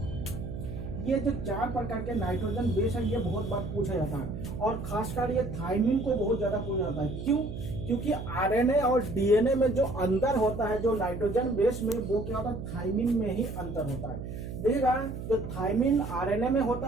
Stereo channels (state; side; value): noise; right; hum, 8 dB below the sound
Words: ये जो चार प्रकार के नाइट्रोजन बेस है ये बहुत बार पूछा जाता है, और खासकर ये थाइमिन को बहुत ज्यादा पूछा जाता है। क्यों? क्योंकि आरएनए और डीएनए में जो अंतर होता है जो नाइट्रोजन बेस में, वो क्या होता है, थाइमिन में ही अंतर होता है। देखिएगा, जो थाइमिन आरएनए में